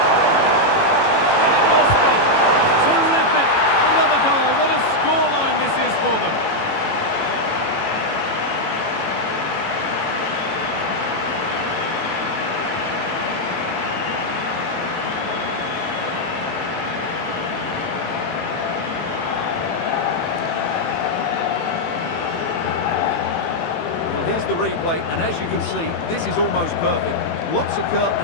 And it must be. Terrific. Another goal. What a scoreline this is for them. Here's the replay, and as you can see, this is almost perfect. Lots of curl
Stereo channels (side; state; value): right; late; 18 ms